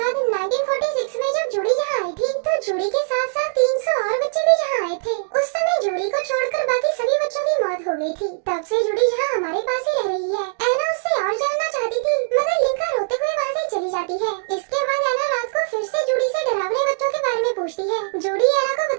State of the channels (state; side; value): silent; left; digital silence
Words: 1946 में जब जूडी यहाँ आई थी, तो जूडी के साथ साथ 300 और बच्चे भी यहाँ आए थे। उस समय जूडी को छोड़कर बाकी सभी बच्चों की मौत हो गई थी। तब से जूडी यहाँ हमारे पास ही रह रही है। एना उससे और जानना चाहती थी, मगर लिंका रोते हुए वहाँ से चली जाती है। इसके बाद एना रात को फिर से जूडी से डरावने बच्चों के बारे में पूछती है। जूडी एना को